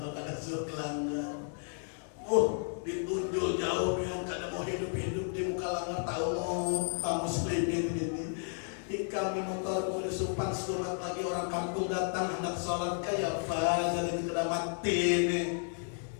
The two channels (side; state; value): right; silent; 56 dB below the other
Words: kada suruh langgar, ditunjuk jauh pian kada mau hidup di muka langgar. Tahu Pak muslimin ini. Kami motor boleh supan surat lagi orang kampung datang hendak sholat kayak apa jadi kena mati nih.